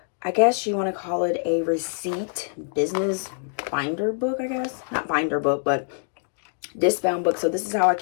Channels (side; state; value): right; silent; digital silence